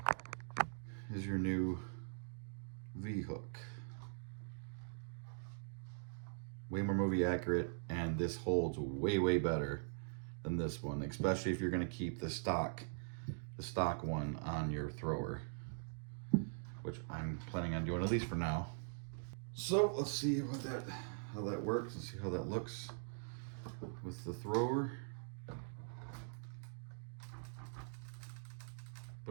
is your new V-hook. way more movie accurate, and this holds way, way better than this one, especially if you're going to keep the stock one on your thrower, which I'm planning on doing, at least for now. So let's see how that works and see how that looks with the thrower.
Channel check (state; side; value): silent; left; digital silence